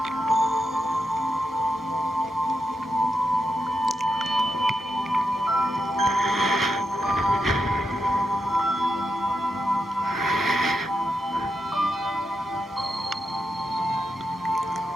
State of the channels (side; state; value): both; normal; correlation 0.86